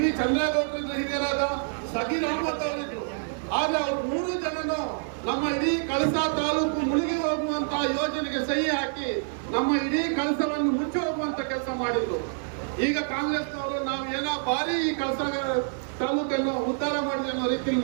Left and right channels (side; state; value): left; silent; digital silence